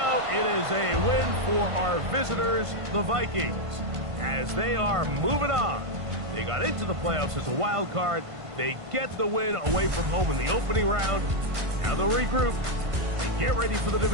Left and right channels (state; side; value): late; left; 1.5 ms